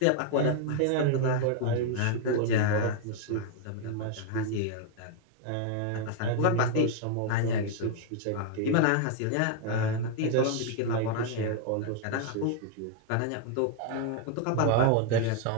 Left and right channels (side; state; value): both; different; correlation 0.00